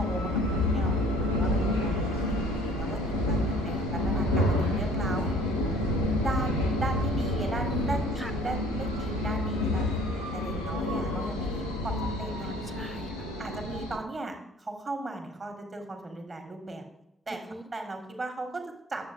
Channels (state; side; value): normal; both; correlation 0.51